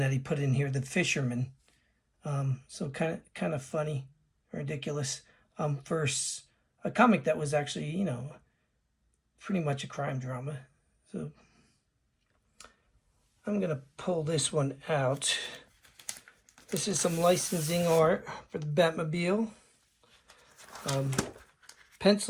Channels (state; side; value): identical; both; correlation 1.00